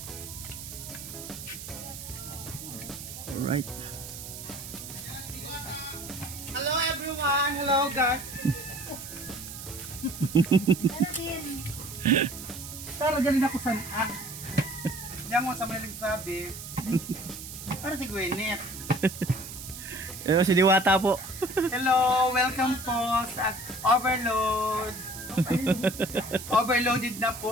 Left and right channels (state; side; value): noise; right; hiss, 11 dB below the sound